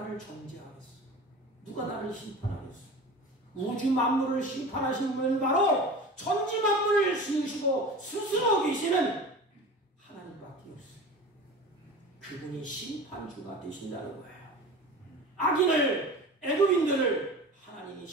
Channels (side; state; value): both; normal; correlation 0.35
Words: 정죄하겠어? 누가 나를 심판하겠어? 우주 만물을 심판하신 분은 바로 천지 만물을 지으시고 스스로 계시는 하나님밖에 없어요. 그분이 심판주가 되신다는 거예요. 악인을, 애굽인들을 하나님이